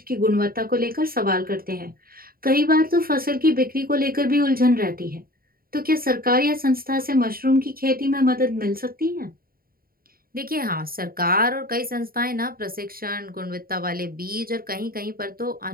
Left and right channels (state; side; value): late; left; 0.43 ms